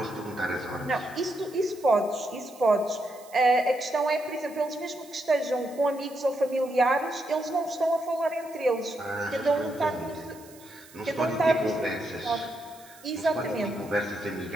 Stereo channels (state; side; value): noise; right; hiss, 22 dB below the sound